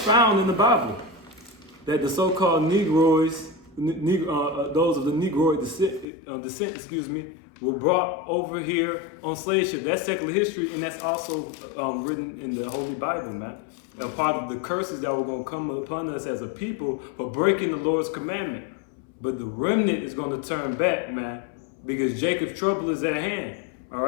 in the Bible, that the so-called Negroids, those of the Negroid descent, were brought over here on slave ship. That's secular history, and that's also written in the Holy Bible, man. A part of the curses that were going to come upon us as a people for breaking the Lord's commandment. But the remnant is going to turn back, man, because Jacob's trouble is at hand. All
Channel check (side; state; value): right; drops out; at 6.1 s